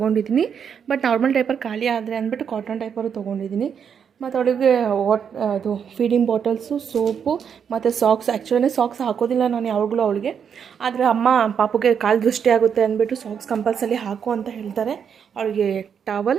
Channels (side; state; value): left; quieter; 7.4 dB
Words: ಬಟ್ ನಾರ್ಮಲ್ ಡೈಪರ್ ಖಾಲಿ ಆದರೆ ಅಂದ್ಬಿಟ್ಟು ಕಾಟನ್ ಡೈಪರು ತೊಗೊಂಡಿದ್ದೀನಿ. ಮತ್ತು ಅವಳಿಗೆ ಅದು ಫೀಡಿಂಗ್ ಬಾಟಲ್ಸು, ಸೋಪು ಮತ್ತು ಸಾಕ್ಸ್. ಆ್ಯಕ್ಚುಲಿ ಸಾಕ್ಸ್ ಹಾಕೋದಿಲ್ಲ ನಾನು ಯಾವಾಗಲೂ ಅವಳಿಗೆ, ಆದರೆ ಅಮ್ಮ ಪಾಪುಗೆ ಕಾಲು ದೃಷ್ಟಿ ಆಗುತ್ತೆ ಅಂದ್ಬಿಟ್ಟು ಸಾಕ್ಸ್ ಕಂಪಲ್ಸರಿ ಹಾಕು ಅಂತ ಹೇಳ್ತಾರೆ. ಅವಳಿಗೆ